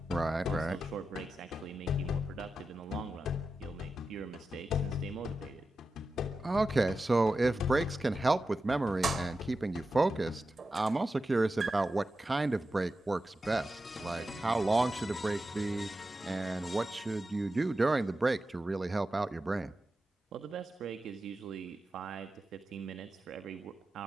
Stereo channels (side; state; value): both; normal; correlation 0.91